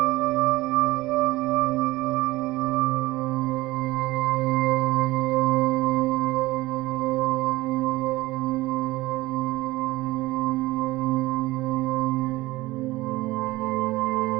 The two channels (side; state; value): left; quieter; 19.2 dB